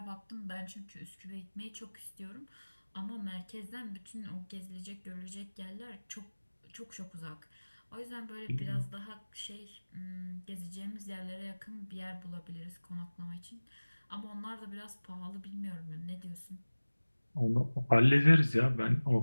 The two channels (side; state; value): both; inverted; correlation -1.00